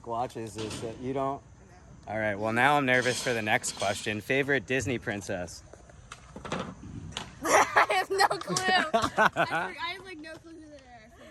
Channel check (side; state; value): both; identical; correlation 1.00